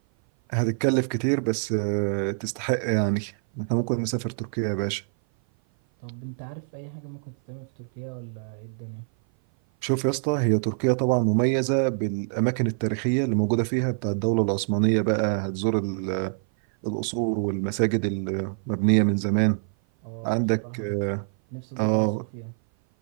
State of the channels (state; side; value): silent; left; 56 dB below the other